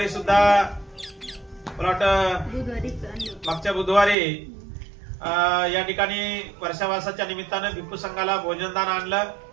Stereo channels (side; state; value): left; drops out; at 4.2 s